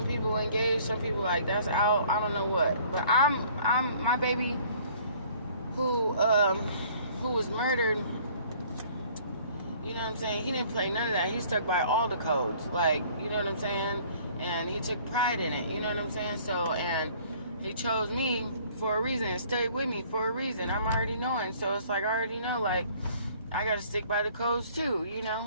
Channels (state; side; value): inverted; both; correlation -0.56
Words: people engage, some people like that's out. I don't know what, but I'm my baby who who was murdered, you know what I'm saying? He didn't play none of that. He stuck by all the codes. Like, you know what I'm saying? And he took pride in it. You know what I'm saying? So, and he chose me for a reason and stayed with me for a reason. I'm already knowing. So it's like, I already know, like, I got to stick by the codes too, you